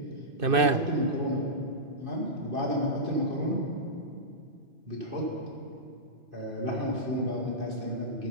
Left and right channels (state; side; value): late; left; 2.6 ms